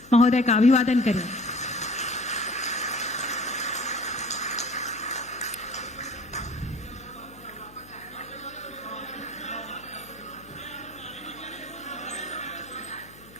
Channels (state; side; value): noise; left; hum, 22 dB below the sound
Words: महोदय का अभिवादन करें।